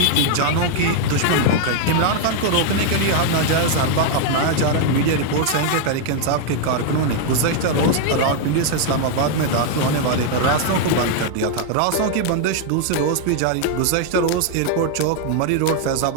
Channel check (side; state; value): both; different; correlation 0.00